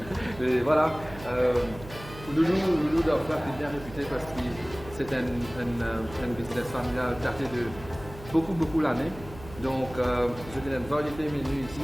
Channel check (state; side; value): noise; right; hum, 16 dB below the sound